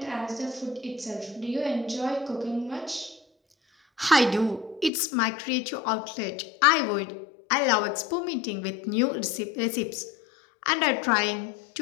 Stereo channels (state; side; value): drops out; right; at 4.9 s